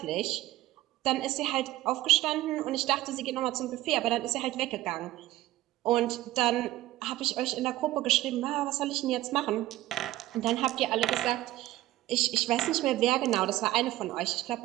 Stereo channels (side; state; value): left; quieter; 15.9 dB